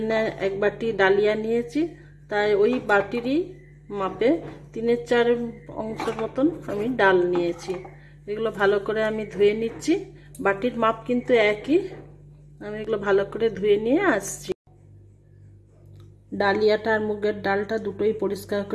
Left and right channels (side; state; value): both; identical; correlation 1.00